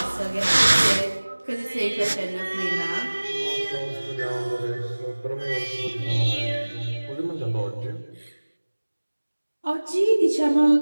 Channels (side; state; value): both; inverted; correlation -1.00